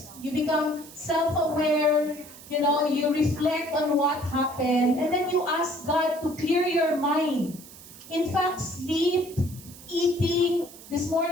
You become self-aware, you reflect on what happened, and then you ask God to clear your mind. In fact, sleep, eating. This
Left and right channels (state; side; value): noise; right; hiss, 18 dB below the sound